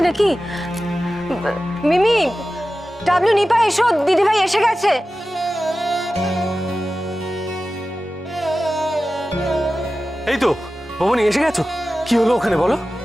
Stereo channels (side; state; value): both; normal; correlation 0.95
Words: নাকি? মিমি, ডাবলু, নিপা এসো, দিদিভাই এসে গেছে। এই তো বৌমনি এসে গেছো। কি হলো ওখানে বলো?